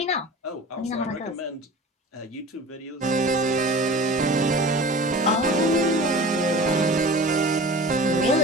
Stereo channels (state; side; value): normal; both; correlation 0.39